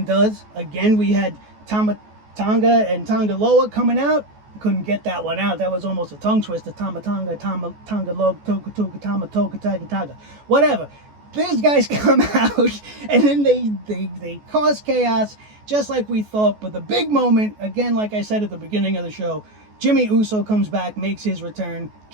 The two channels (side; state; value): left; late; 14 ms